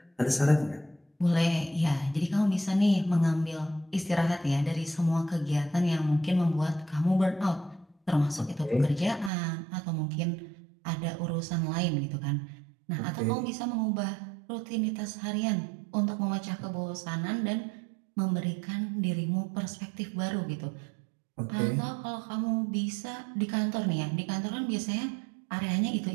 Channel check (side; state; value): left; drops out; at 9.3 s